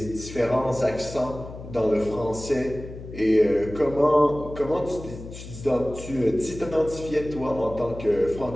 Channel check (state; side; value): noise; left; hum, 13 dB below the sound